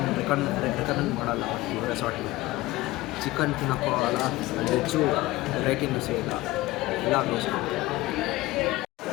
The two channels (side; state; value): right; quieter; 18.8 dB